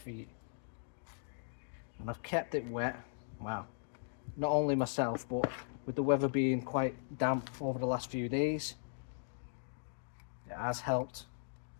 feet, and I've kept it wet. Wow, not only myself, but with the weather being quite damp over the last few days, it has helped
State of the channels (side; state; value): right; silent; digital silence